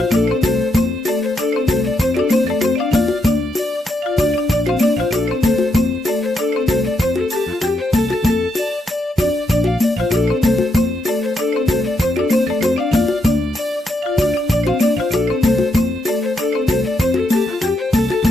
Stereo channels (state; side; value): normal; both; correlation 0.80